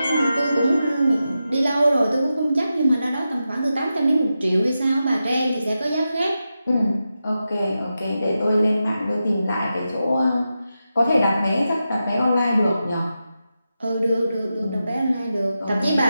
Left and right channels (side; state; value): both; inverted; correlation -0.90